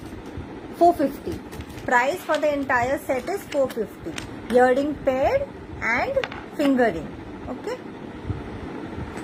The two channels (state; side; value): identical; both; correlation 1.00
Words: 450. Price for the entire set is 450. Earring pair and fingering. Okay.